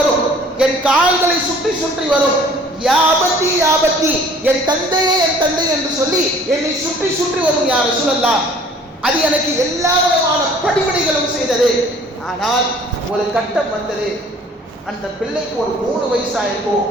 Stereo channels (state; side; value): normal; both; correlation 0.52